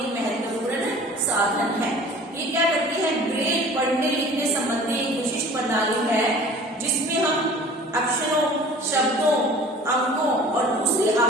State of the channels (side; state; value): both; normal; correlation 0.45